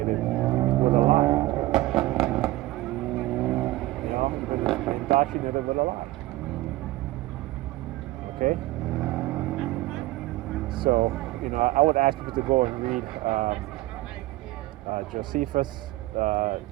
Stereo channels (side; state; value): left; quieter; 18.1 dB